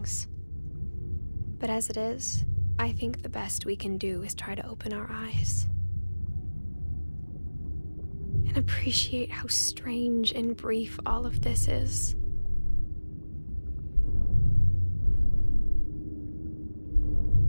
But as it is, I think the best we can do is try to open our eyes and appreciate how strange and brief all of this is.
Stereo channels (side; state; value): both; inverted; correlation -1.00